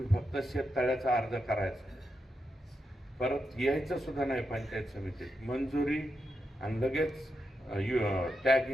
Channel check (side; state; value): both; normal; correlation 0.86